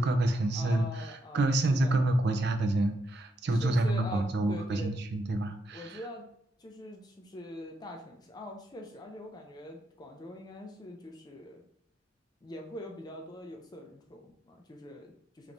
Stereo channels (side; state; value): both; normal; correlation 0.81